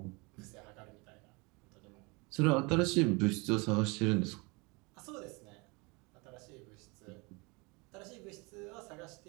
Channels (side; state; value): left; quieter; 27.8 dB